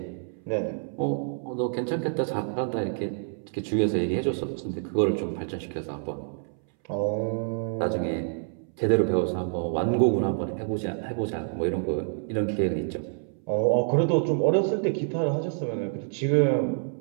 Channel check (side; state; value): left; silent; 60 dB below the other